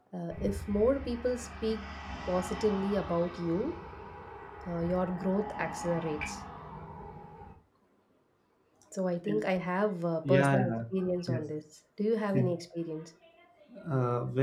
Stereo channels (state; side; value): identical; both; correlation 1.00